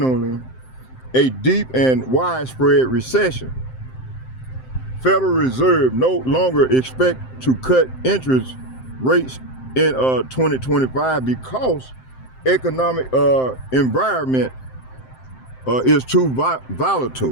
a deep and widespread recession. Federal Reserve no longer expect to cut interest rates in 2025 because economic environment is too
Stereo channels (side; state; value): right; late; 7.7 ms